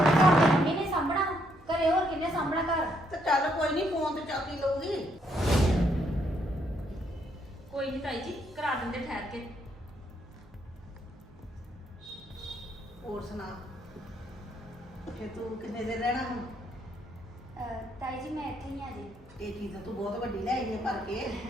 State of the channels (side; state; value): both; normal; correlation 0.73